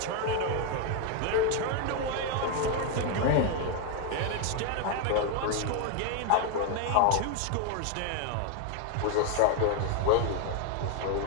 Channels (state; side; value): different; both; correlation 0.01